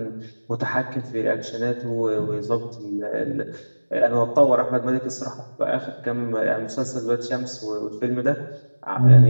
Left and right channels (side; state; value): both; inverted; correlation -1.00